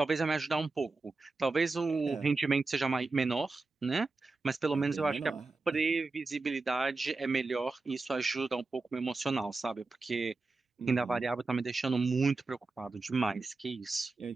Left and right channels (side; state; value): left; quieter; 3.7 dB